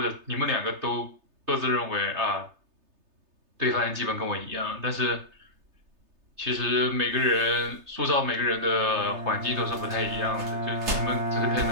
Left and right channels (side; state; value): left; late; 3.3 ms